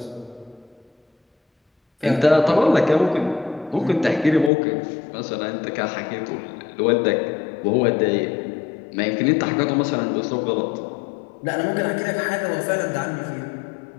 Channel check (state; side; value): drops out; right; at 4.5 s